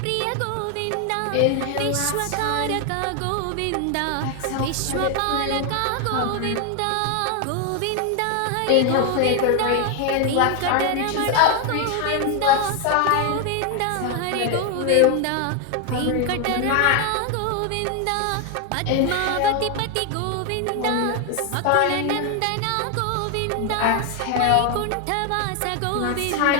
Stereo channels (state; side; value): different; both; correlation 0.01